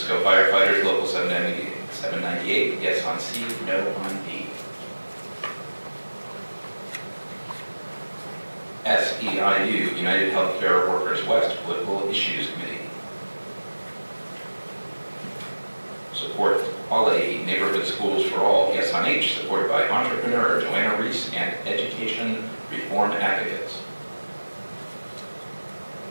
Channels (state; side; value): inverted; both; correlation -1.00